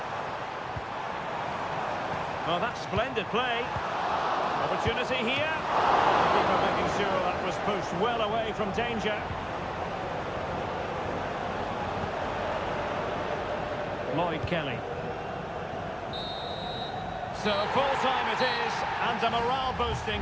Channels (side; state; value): both; identical; correlation 1.00